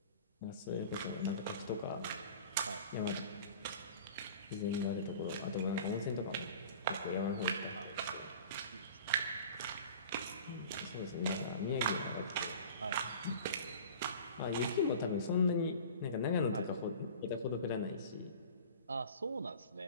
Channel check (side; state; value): both; inverted; correlation -0.41